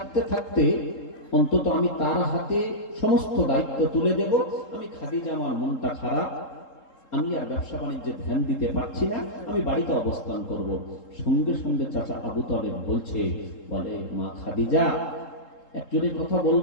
থাকতে অন্তত আমি তার হাতে সমস্ত দায়িত্ব তুলে দেব। আমি খাদিজা, আমার মনটা খারাপ, আমি আর ব্যবসা বাণিজ্যে ধ্যান দিতে পারছি না, আমি বাড়িতে অবস্থান করব। সঙ্গে সঙ্গে চাচা আবু তালেব বলছে, বলে মা খাদিজা, একজনের কথা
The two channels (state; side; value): late; right; 3.8 ms